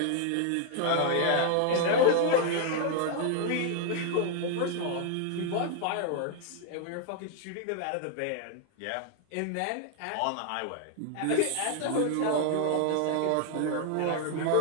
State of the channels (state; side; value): different; both; correlation 0.00